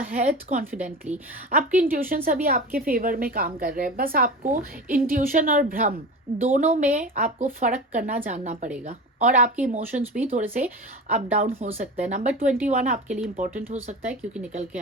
confidently. आपकी इंट्यूशन अभी आपके फेवर में काम कर रहे हैं, बस आपको इंट्यूशन और भ्रम दोनों में आपको फर्क करना जानना पड़ेगा, और आपके इमोशंस भी थोड़े से अप डाउन हो सकते हैं। नंबर 21 आपके लिए इंपॉर्टेंट हो सकता है क्योंकि निकल के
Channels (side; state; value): both; normal; correlation 0.30